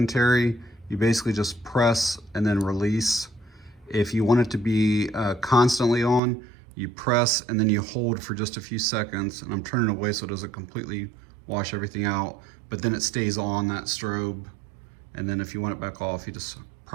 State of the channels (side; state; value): left; drops out; at 6.2 s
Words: you basically just press and then release. If you want it to be constantly on, you press and then you hold for just a few seconds. And I'm turning away so it doesn't completely wash everything out, but then it stays on, that strobe. And then if you want it back off, you just